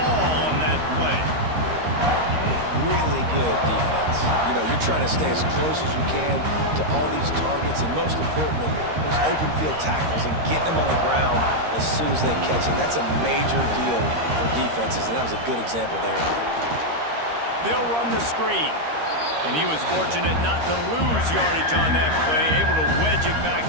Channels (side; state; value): left; late; 13 ms